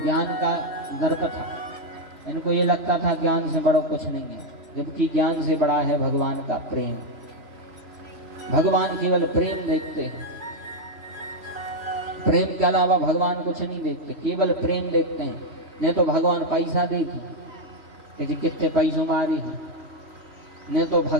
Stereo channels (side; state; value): left; late; 3.0 ms